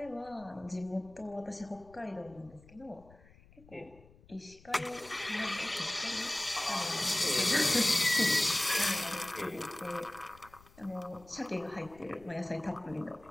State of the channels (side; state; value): left; noise; rumble, 24 dB below the sound